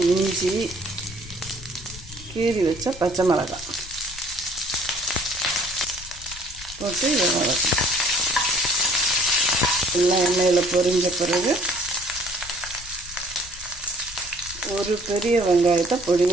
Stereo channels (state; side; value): noise; left; rumble, 16 dB below the sound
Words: இஞ்சி, கீறி வச்ச பச்சை மிளகாய் போட்டு இதை வதக்கணும். எல்லாம் எண்ணெயில் பொரிஞ்ச பிறகு ஒரு பெரிய வெங்காயத்தை